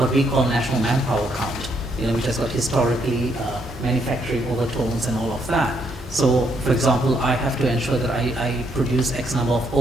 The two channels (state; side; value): normal; both; correlation 0.74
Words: we call national manpower count, which has got historically manufacturing overtones and all of that. So, for example, I have to ensure that I produce X number of